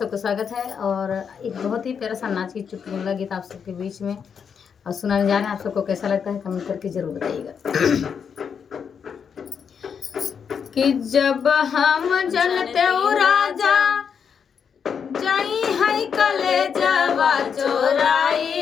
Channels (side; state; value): right; quieter; 6.9 dB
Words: स्वागत है। और एक बहुत ही प्यारा सा नाच की चुटकुला गीत आप सबके बीच में और सुनाने जा रहे हैं। आप सबको कैसा लगता है कमेंट करके जरूर बताइएगा। कि जब हम जनते हो राजा जाई है कलेजवा चोराई